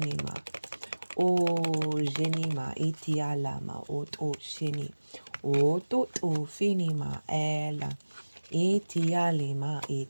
genima itialama shini finima ela itialima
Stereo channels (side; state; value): both; inverted; correlation -1.00